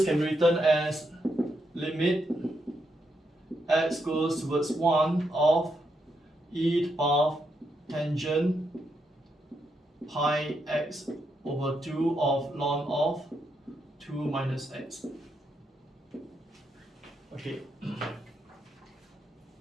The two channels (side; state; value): both; normal; correlation 0.81